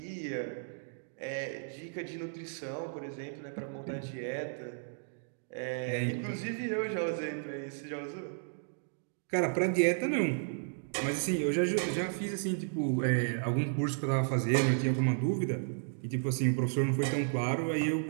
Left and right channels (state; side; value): silent; left; digital silence